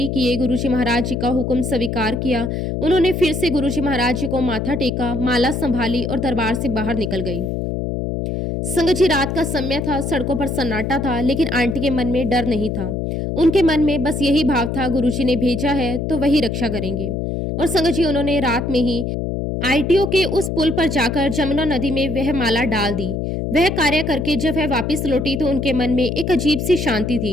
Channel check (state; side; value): noise; left; hum, 2 dB below the sound